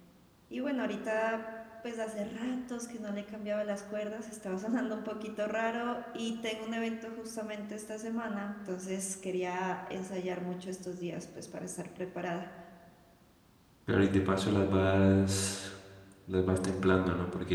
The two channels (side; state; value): both; identical; correlation 1.00